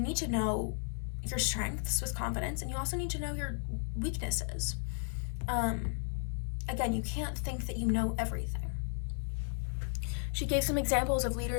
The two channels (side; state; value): right; silent; 55 dB below the other